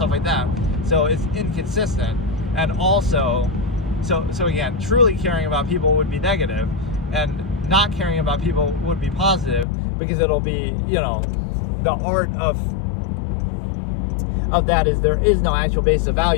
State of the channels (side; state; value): right; drops out; at 9.7 s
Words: like that. So it's inconsistent. And also, so again, truly caring about people would be negative, and not caring about people would be positive, because it'll be, the art of that is there is no actual basis of